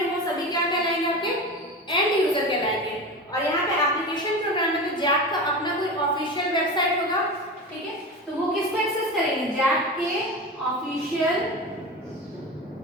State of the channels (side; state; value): both; normal; correlation 0.27